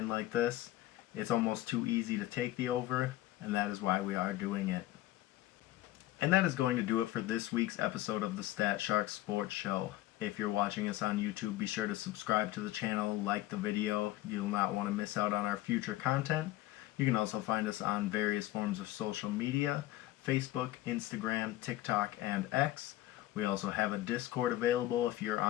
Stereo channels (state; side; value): quieter; right; 15.8 dB